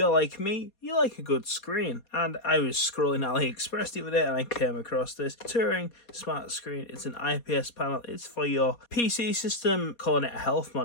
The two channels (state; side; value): late; right; 4.2 ms